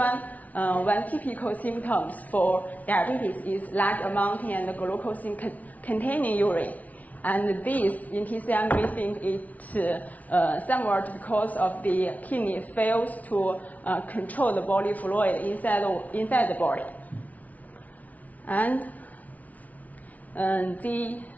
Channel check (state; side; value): late; right; 0.073 ms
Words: typical symptoms for diabetes is large amount and glucose containing urine. And this, in TCM, we think it's somewhat because of the kidney fails to control the body fluid inside the body. And